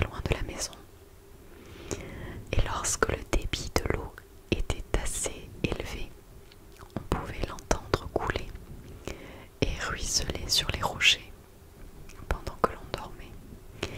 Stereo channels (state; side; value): identical; both; correlation 1.00